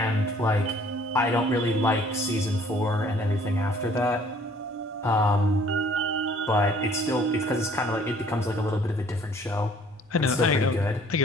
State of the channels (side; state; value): both; normal; correlation 0.57